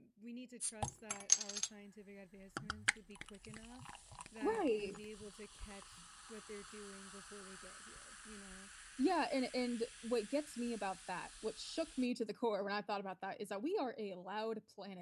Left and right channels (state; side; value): identical; both; correlation 1.00